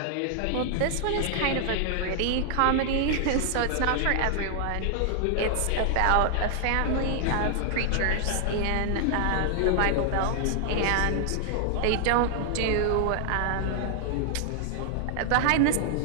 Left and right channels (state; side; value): different; both; correlation 0.00